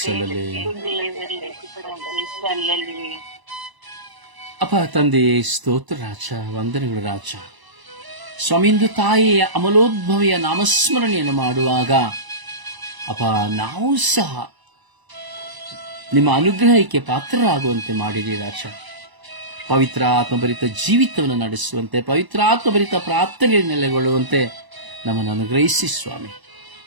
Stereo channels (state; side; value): late; left; 1.0 ms